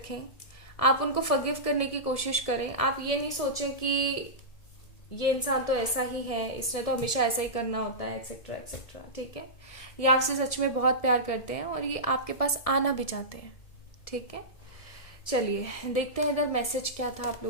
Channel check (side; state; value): right; late; 1.7 ms